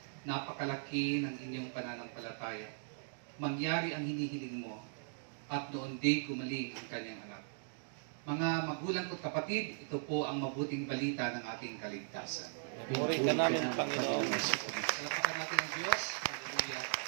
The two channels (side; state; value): left; silent; digital silence